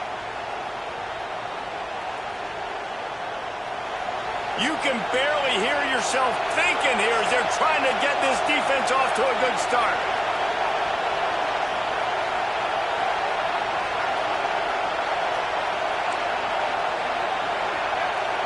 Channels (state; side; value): identical; both; correlation 1.00